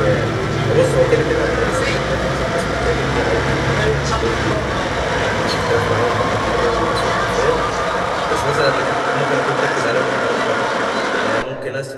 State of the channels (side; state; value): both; identical; correlation 1.00